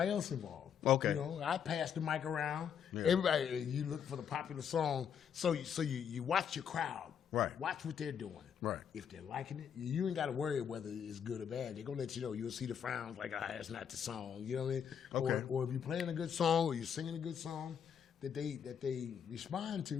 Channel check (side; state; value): right; quieter; 8.0 dB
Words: else involved. Okay. You know, I pass the mic around. Yeah. Everybody, you look for the popular song. So you watch your crowd. Right. Watch what they're doing. Right. If they're liking it, you ain't got to worry whether it's good or bad. They're going to let you know. You'll see the frowns like, that's not the song. You know what I mean? Okay. Or if you're playing a good song or you're singing a good song that they respond